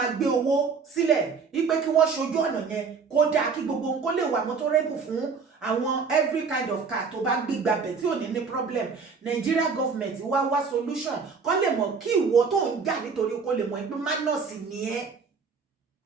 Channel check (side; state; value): left; quieter; 5.3 dB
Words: gbé owó sílẹ̀ wípé kí wọ́n ṣojú ọ̀nà yẹn kó dáa, kí gbogbo nǹkan lè wà motorable fún àwọn every kind of car tó bá gbé gbabẹ̀ tí ò ní problem. Nigeria government wá solution kó lè mọ̀ kí ìwọ tó ń jà nítorí kó lè mọ̀ pé manus ni ẹ́.